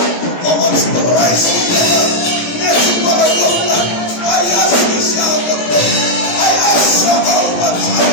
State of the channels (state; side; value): late; right; 17 ms